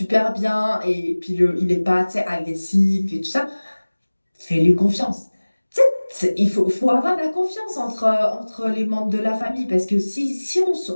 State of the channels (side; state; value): both; inverted; correlation -1.00